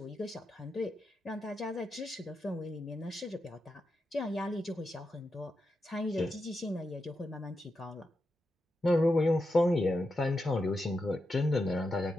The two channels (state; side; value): normal; both; correlation 0.87